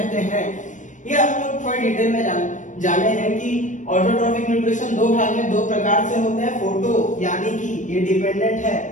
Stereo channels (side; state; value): right; late; 0.37 ms